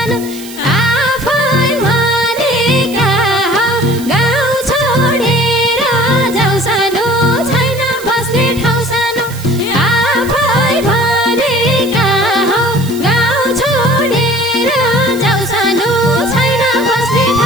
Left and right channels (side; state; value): right; noise; hiss, 15 dB below the sound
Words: आफै भनेका हौ गाउँ छोडेर जाऊ सानो छैन बस्ने ठाउँ सानो आफै भने